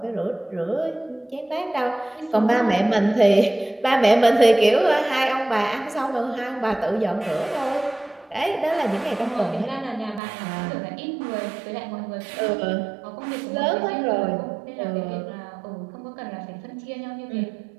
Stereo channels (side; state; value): left; drops out; at 10.2 s